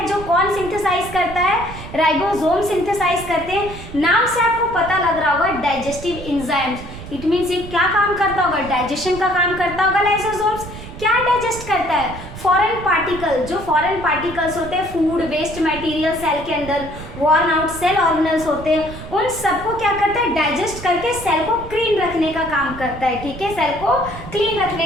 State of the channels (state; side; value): noise; right; rumble, 12 dB below the sound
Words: जो कौन सिंथेसाइज करता है, राइबोसोम सिंथेसाइज करते हैं। नाम से आपको पता लग रहा होगा डाइजेस्टिव एंजाइम्स, इट मींस ये क्या काम करता होगा, डाइजेशन का काम करता होगा। लाइसोसोम्स क्या डाइजेस्ट करता है, फॉरेन पार्टिकल, जो फॉरेन पार्टिकल्स होते हैं, फूड वेस्ट मटेरियल सेल के अंदर वॉर्न आउट सेल ऑर्गेनल्स होते हैं, उन सबको क्या करता है, डाइजेस्ट करके सेल को क्लीन रखने का काम करता है, ठीक है, सेल को क्लीन